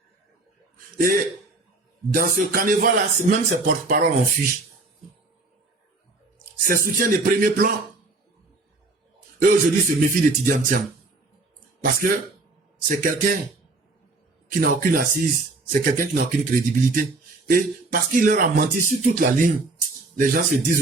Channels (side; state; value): left; quieter; 3.3 dB